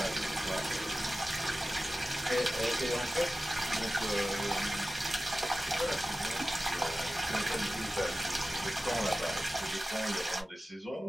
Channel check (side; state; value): both; normal; correlation 0.96